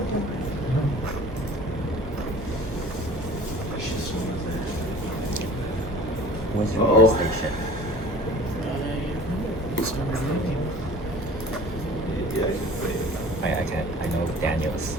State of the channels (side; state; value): both; normal; correlation 0.46